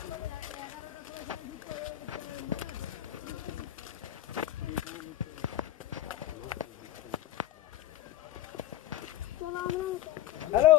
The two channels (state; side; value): quieter; right; 13.2 dB